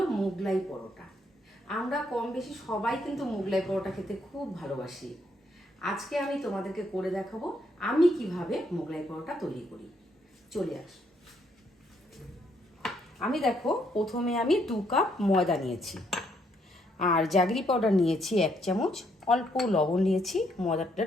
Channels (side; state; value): both; normal; correlation 0.72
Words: মোগলাই পরোটা। আমরা কম বেশি সবাই কিন্তু মোগলাই পরোটা খেতে খুব ভালোবাসি। আজকে আমি তোমাদেরকে করে দেখাবো আমি কিভাবে মোগলাই পরোটা তৈরি করি। চলে আস। দেখো প্রথমে আমি 2 কাপ ময়দা নিয়েছি, আর জাগরি পাউডার নিয়েছি 1 চামচ, অল্প লবণ নিয়েছি